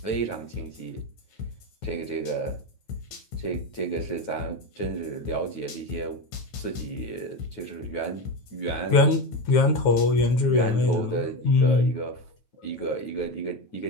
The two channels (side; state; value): right; late; 9.3 ms